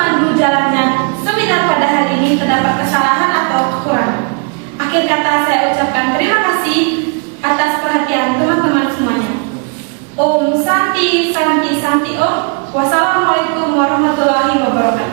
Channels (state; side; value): quieter; left; 36.1 dB